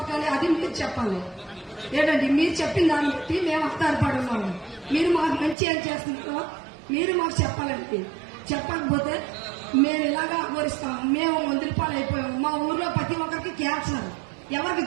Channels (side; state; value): left; drops out; at 5.6 s